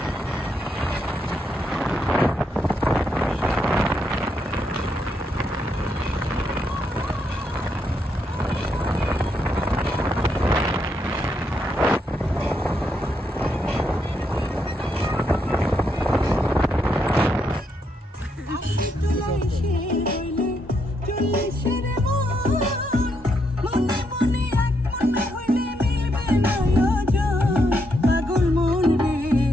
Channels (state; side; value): normal; both; correlation 0.78